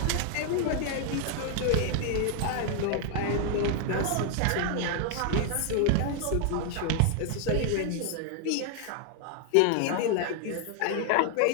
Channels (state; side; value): different; both; correlation 0.00